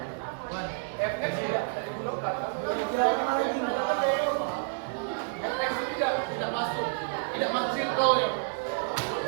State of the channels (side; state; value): left; silent; 58 dB below the other